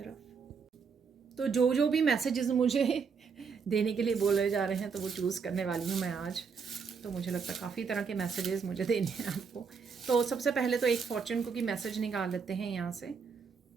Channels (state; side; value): quieter; left; 5.7 dB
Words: तो जो भी मैसेजेस मुझे देने के लिए बोले जा रहे हैं, तो वो चूज़ करने वाली हूँ मैं आज। तो मुझे लगता है काफ़ी तरह के मैसेजेस मुझे देने हैं आपको। तो सबसे पहले तो एक फॉर्चून कुकी मैसेज निकाल लेते हैं यहाँ से।